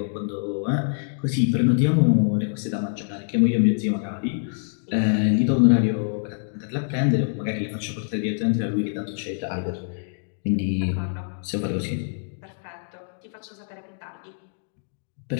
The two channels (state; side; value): silent; right; digital silence